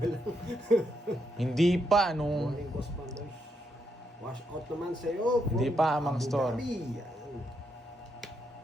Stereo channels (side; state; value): both; normal; correlation 0.79